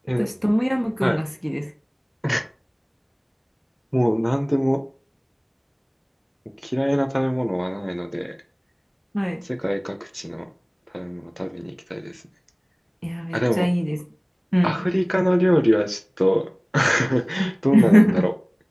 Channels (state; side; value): identical; both; correlation 1.00